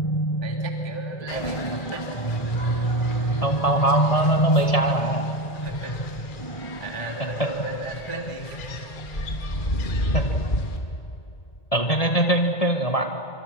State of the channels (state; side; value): late; right; 1.7 ms